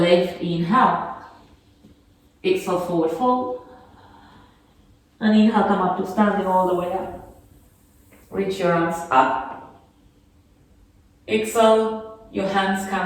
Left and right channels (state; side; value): identical; both; correlation 1.00